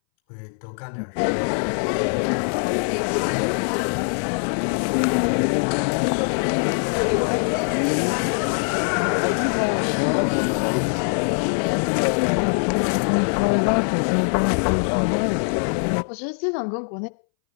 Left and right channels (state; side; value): silent; right; 62 dB below the other